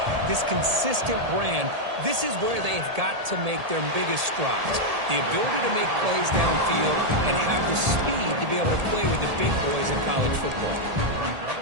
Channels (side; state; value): left; late; 1.8 ms